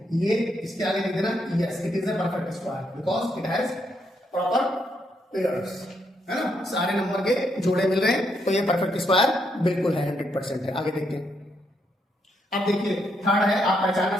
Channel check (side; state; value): both; normal; correlation 0.77